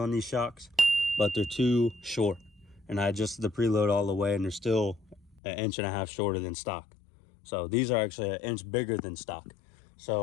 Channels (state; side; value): drops out; right; at 5.4 s